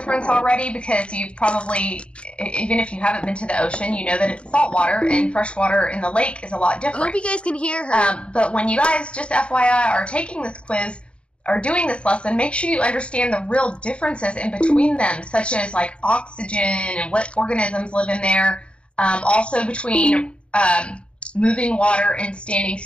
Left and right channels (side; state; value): right; late; 0.058 ms